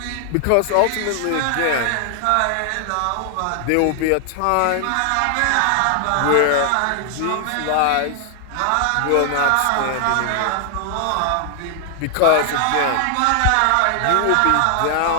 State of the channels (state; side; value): different; both; correlation 0.00